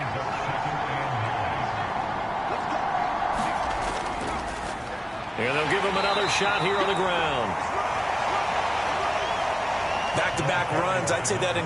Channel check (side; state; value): both; identical; correlation 1.00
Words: And they'll give him another shot here on the ground. Back-to-back runs, I'd say that